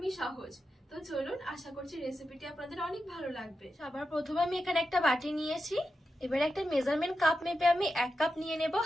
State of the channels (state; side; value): normal; both; correlation 0.89